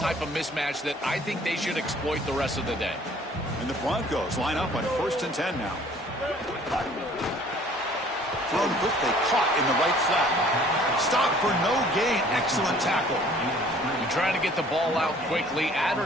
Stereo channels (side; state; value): both; normal; correlation 0.54